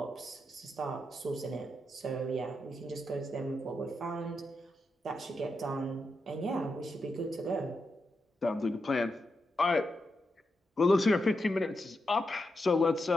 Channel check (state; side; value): normal; both; correlation 0.86